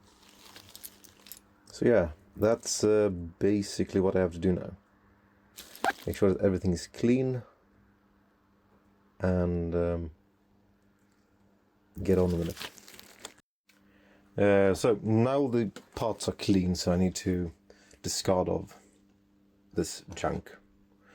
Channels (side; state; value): both; identical; correlation 1.00